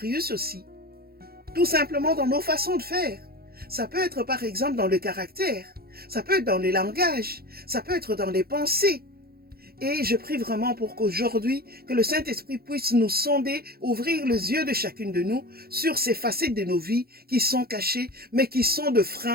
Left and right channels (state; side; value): late; left; 0.44 ms